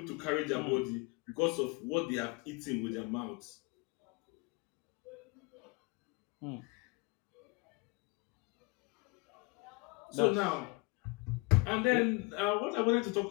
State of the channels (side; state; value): right; quieter; 28.2 dB